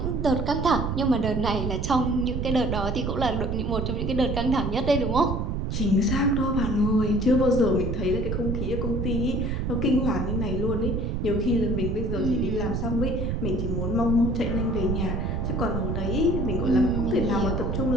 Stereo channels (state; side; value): noise; right; rumble, 1 dB below the sound